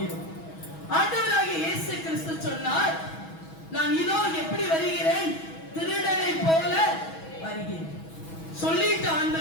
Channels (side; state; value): right; late; 6.2 ms